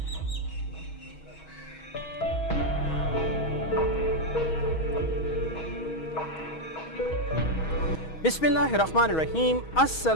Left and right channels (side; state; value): right; late; 6.3 ms